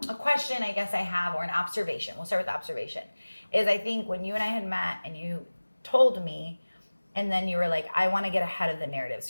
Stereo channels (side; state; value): both; inverted; correlation -1.00